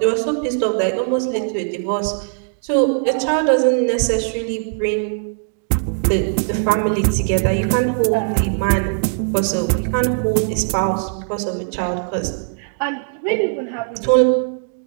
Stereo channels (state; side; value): silent; left; digital silence